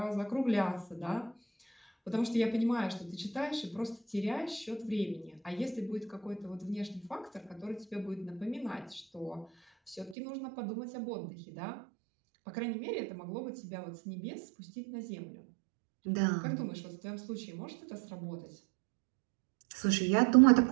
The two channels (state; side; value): drops out; left; at 10.2 s